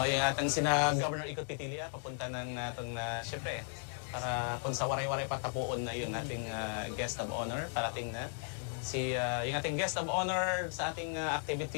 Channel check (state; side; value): silent; right; 54 dB below the other